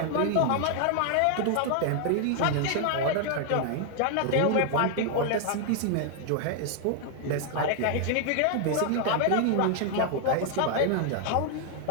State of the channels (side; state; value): both; different; correlation 0.00